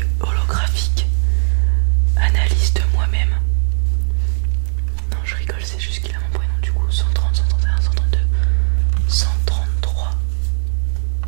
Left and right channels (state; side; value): silent; left; digital silence